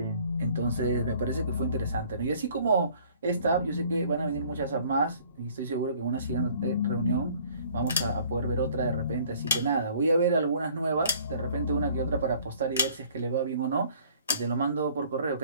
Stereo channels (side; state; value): both; inverted; correlation -0.56